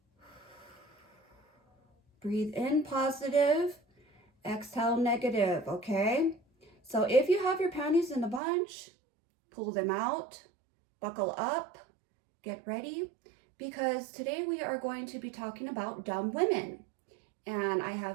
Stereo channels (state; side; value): drops out; left; at 8.4 s